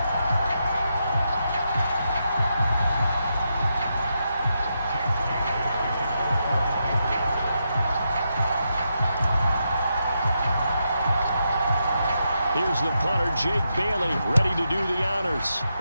Here's the punter, Jake Bailey, ready to do the honors.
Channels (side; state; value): both; inverted; correlation -0.84